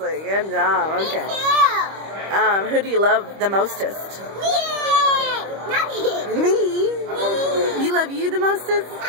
Good job. Okay. Me too. Who do you love the mostest? Me. Not me. Me. You love you the mostest? I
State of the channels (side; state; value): left; late; 25 ms